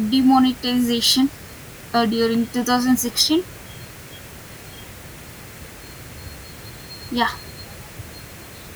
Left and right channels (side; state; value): both; identical; correlation 1.00